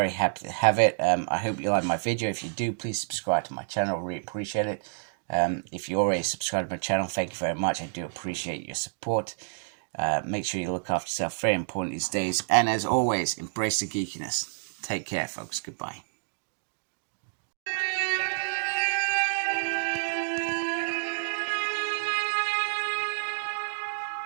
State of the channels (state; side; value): silent; left; digital silence